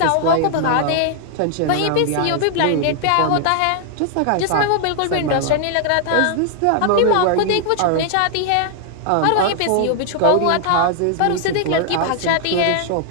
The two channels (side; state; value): both; different; correlation 0.00